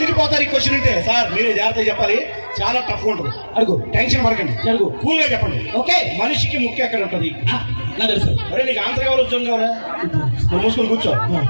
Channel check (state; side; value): inverted; both; correlation -1.00